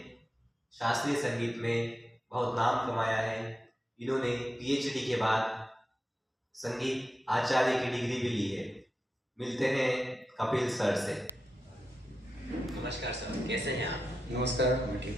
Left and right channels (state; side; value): normal; both; correlation 0.89